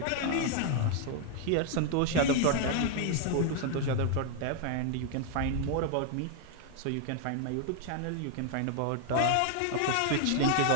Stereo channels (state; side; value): different; both; correlation 0.00